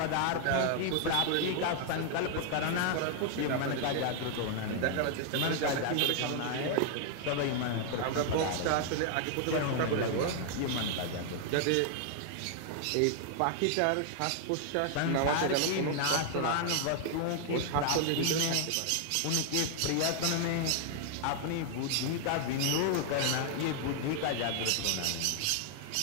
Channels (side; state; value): both; different; correlation 0.00